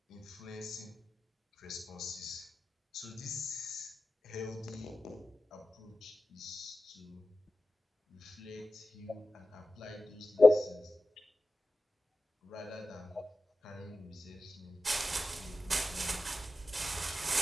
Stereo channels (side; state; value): both; normal; correlation 0.94